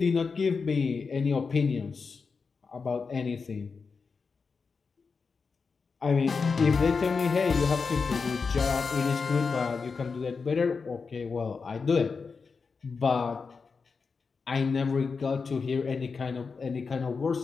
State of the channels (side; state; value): right; quieter; 5.0 dB